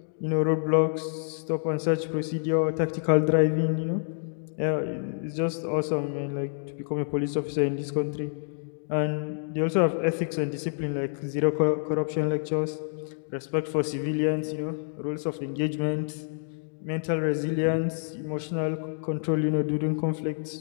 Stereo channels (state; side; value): silent; right; digital silence